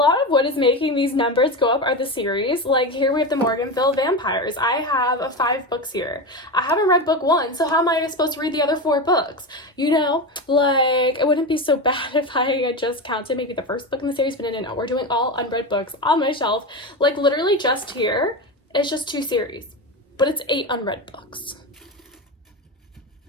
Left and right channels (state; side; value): normal; both; correlation 0.19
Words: of what is making these numbers go up are the series. Like here we have the Morganville Vampires. I have 5 books here. I haven't read book 1, so how am I supposed to read the other 4 books? You know, like it wouldn't be so bad if I had just counted maybe the first book in the series, but no, we're doing all unread books on my shelf. Like literally just here, it's just 2 series, but it's 8 unread books.